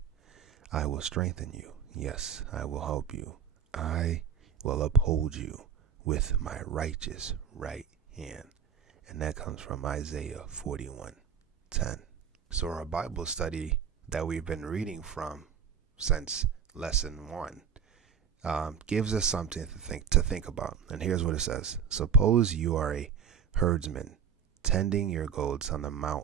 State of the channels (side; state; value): left; quieter; 7.5 dB